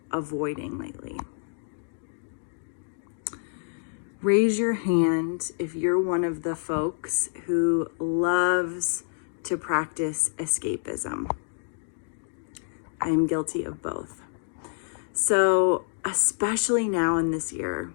avoiding lately. Raise your hand if you're one of the folks who loves to practice escapism. I am guilty of both. So, especially now in this year,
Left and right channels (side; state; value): right; silent; digital silence